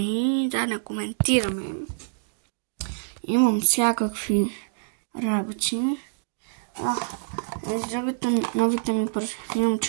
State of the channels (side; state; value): left; silent; digital silence